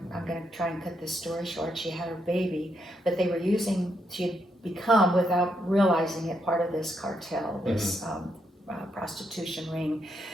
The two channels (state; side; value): normal; both; correlation 0.79